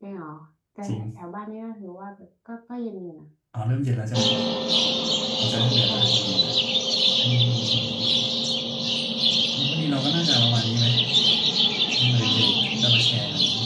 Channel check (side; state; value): both; identical; correlation 1.00